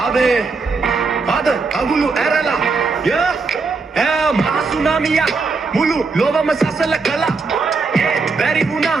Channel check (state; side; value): quieter; left; 4.3 dB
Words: Father, Agulu Erala, yeah, Masunamia, Mulu, Lova Masasala Kala, Very